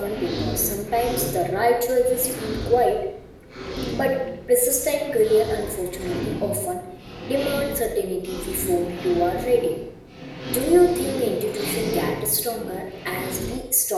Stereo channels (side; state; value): both; identical; correlation 1.00